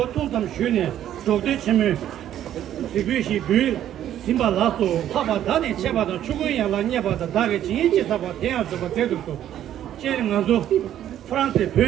통담 쉬네 저대 치면 지비시 비 심발라소 파바다니 제바다 죽은야 라냐바다 다게 진지 사바 대야서바 제도도 제링아조 프랑스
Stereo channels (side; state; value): left; quieter; 11.3 dB